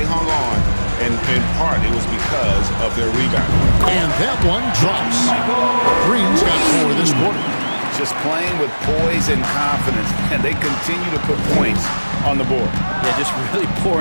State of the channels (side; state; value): both; inverted; correlation -1.00